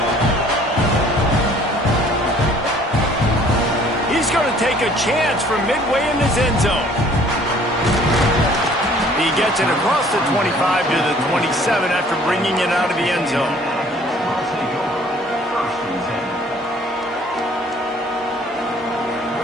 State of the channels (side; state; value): both; normal; correlation 0.56